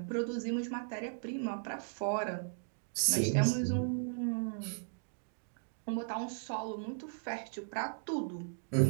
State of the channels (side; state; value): left; silent; digital silence